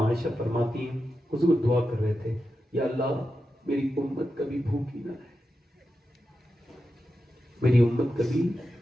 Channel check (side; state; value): both; normal; correlation 0.90